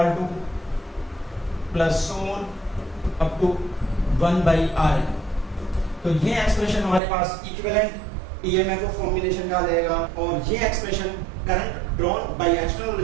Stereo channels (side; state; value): left; drops out; at 7.0 s